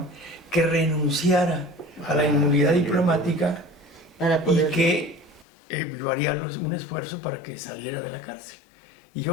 que renunciara a la inmunidad diplomática y que yo haría un esfuerzo para que saliera de la cárcel. Y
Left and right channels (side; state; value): right; drops out; at 5.5 s